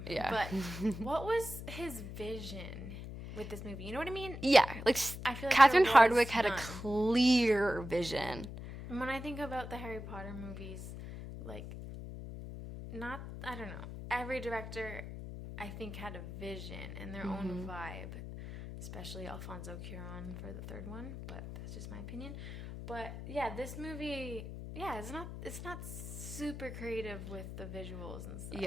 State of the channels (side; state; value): left; noise; hum, 9 dB below the sound